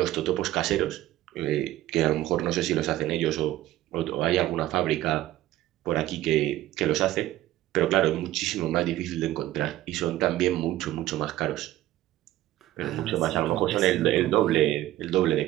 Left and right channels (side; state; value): left; quieter; 14.7 dB